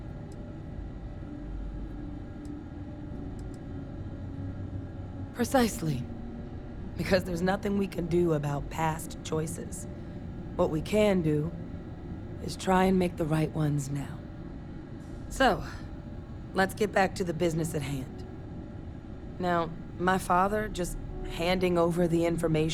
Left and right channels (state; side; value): identical; both; correlation 1.00